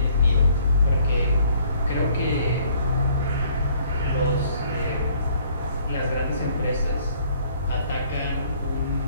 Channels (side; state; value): both; inverted; correlation -0.60